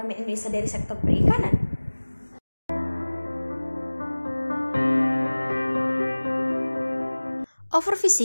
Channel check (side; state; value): both; inverted; correlation -1.00